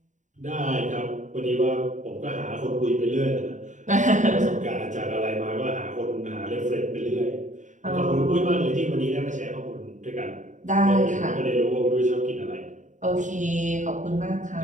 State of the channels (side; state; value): left; late; 0.36 ms